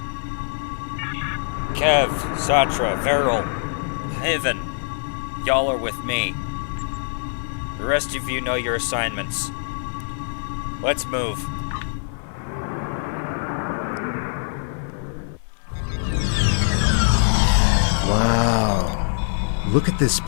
Kev, Satra, Veril, Haven, y'all are with me. The rest of you know your assignments. Let's move. Wow. Look at this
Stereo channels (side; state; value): right; silent; digital silence